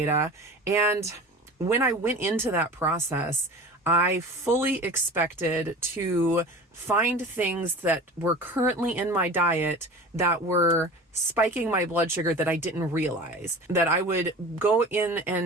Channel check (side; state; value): both; normal; correlation 0.37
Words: And when I went into that process, I fully expected to find things that were currently in my diet that were spiking my blood sugar that I didn't realize. That I would go in